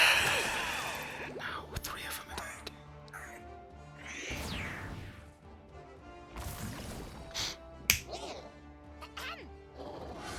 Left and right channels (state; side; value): identical; both; correlation 1.00